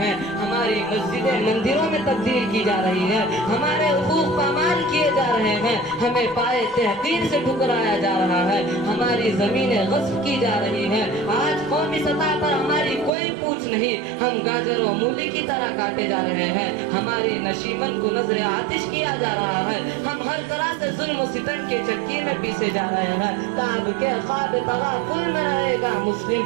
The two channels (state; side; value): drops out; left; at 13.1 s